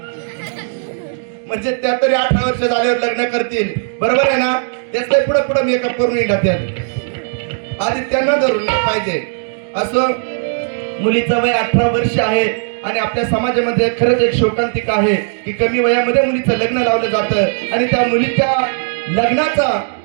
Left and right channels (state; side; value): silent; left; digital silence